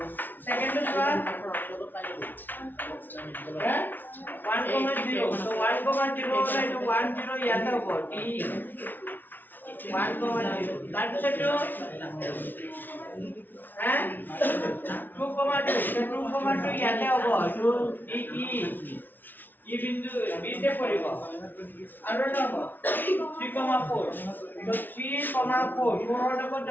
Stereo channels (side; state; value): right; late; 0.089 ms